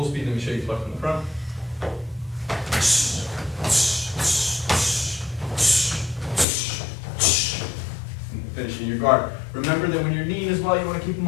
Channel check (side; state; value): right; drops out; at 6.5 s